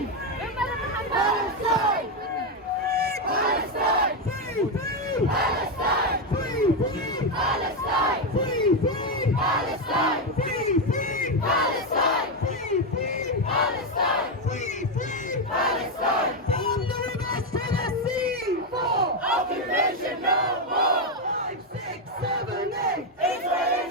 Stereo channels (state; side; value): normal; both; correlation 0.06